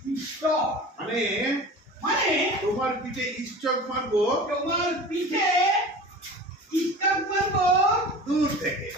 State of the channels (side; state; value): both; normal; correlation 0.37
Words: ইষ্ট মানে মানে তোমার পিঠে স্টক মারবো তোমার